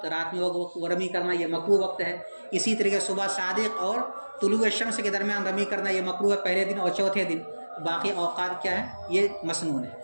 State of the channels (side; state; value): both; inverted; correlation -1.00